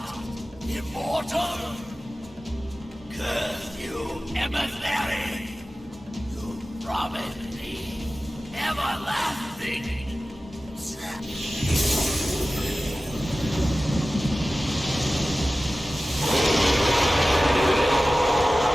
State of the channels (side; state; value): both; normal; correlation 0.96